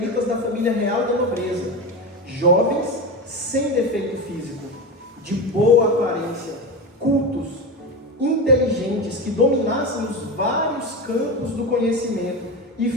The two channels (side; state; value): both; normal; correlation 0.21